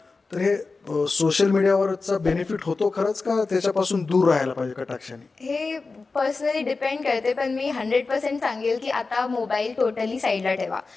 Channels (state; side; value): quieter; right; 4.0 dB